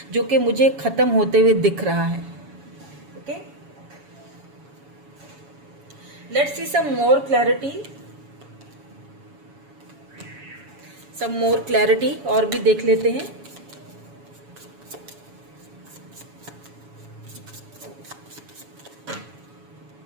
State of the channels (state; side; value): late; left; 7.1 ms